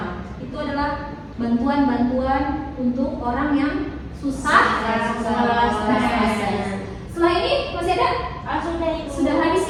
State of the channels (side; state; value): both; identical; correlation 1.00